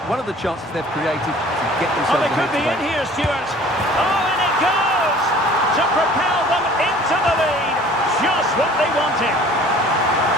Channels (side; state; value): both; normal; correlation 0.49